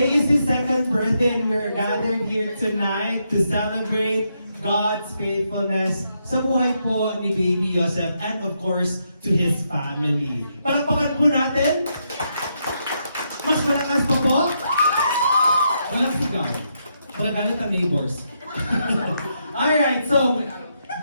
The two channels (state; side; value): inverted; both; correlation -0.80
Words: is his second birthday and we're gathered here tonight to celebrate God's faithfulness sa buhay po ni Baby Yosef and of course to his family. Palakpakan po natin. Mas malakas pa po. Walang sigaw. Magagalit ang neighbors. Alright, so